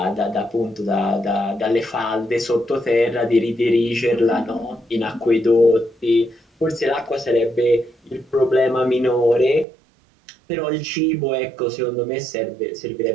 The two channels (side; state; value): left; drops out; at 9.7 s